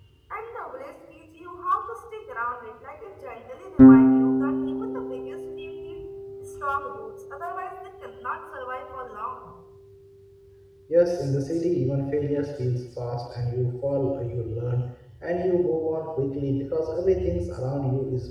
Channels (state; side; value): identical; both; correlation 1.00